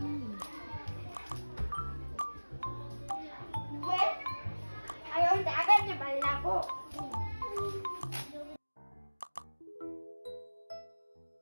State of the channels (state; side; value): inverted; both; correlation -1.00